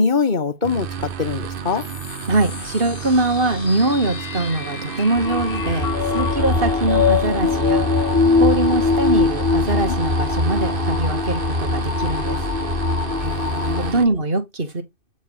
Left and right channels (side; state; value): left; late; 2.5 ms